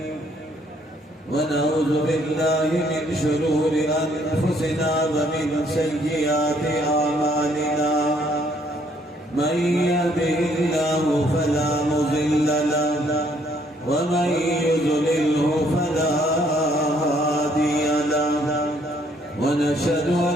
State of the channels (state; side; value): normal; both; correlation 0.66